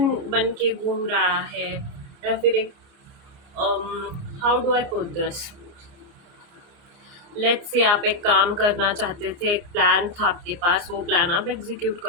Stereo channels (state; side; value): late; left; 29 ms